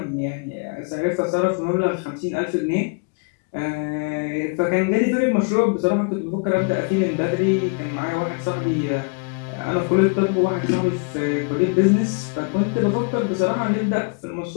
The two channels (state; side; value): quieter; right; 36.2 dB